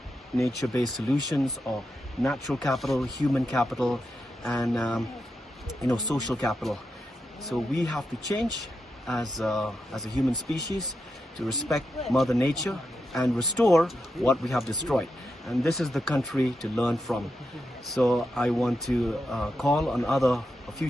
nature-based solutions or natural capital, human capital, and social capital. So we have to change as a human species to respect Mother Nature and restore what we have destroyed. And this is the country to learn from. So I want to call on other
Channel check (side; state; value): both; normal; correlation 0.87